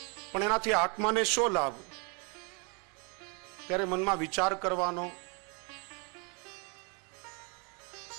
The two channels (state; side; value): quieter; left; 33.3 dB